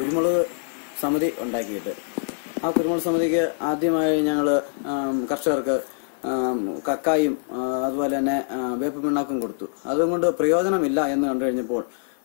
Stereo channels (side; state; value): right; silent; 63 dB below the other